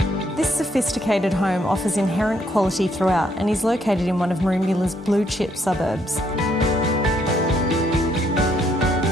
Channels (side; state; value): both; normal; correlation 0.71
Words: This sophisticated home offers inherent quality throughout and is located in one of Merimbula's blue chip suburbs.